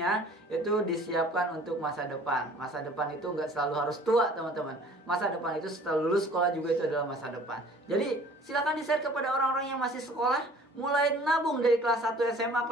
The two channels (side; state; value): both; normal; correlation 0.50